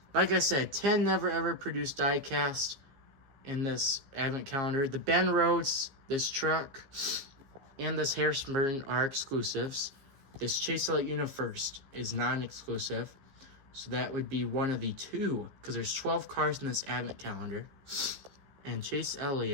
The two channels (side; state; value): left; late; 15 ms